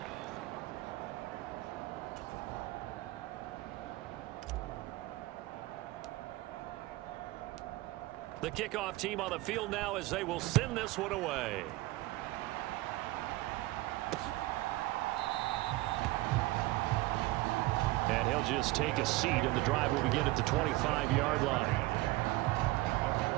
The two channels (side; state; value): left; quieter; 19.5 dB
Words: The kickoff team on the field now as they will send this one away. And he'll just take a seat, and the drive will begin at the 25-yard line.